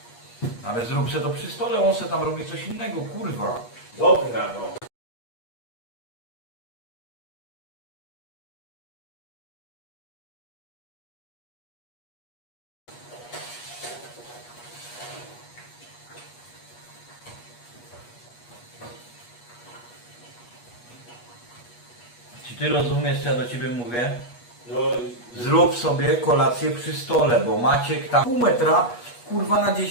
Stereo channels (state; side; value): late; right; 8.3 ms